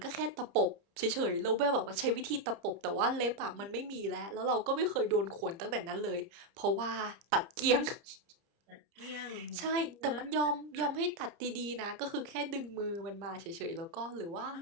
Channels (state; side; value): late; left; 30 ms